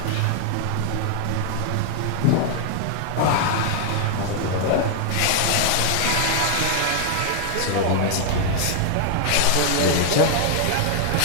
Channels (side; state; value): both; different; correlation 0.00